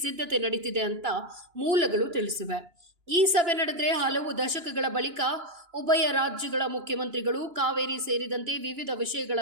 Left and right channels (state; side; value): late; left; 2.9 ms